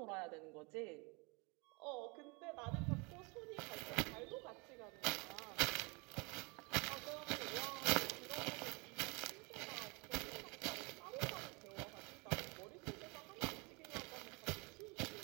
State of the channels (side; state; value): left; quieter; 29.3 dB